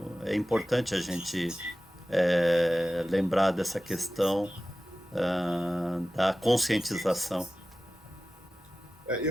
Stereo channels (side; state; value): both; normal; correlation 0.95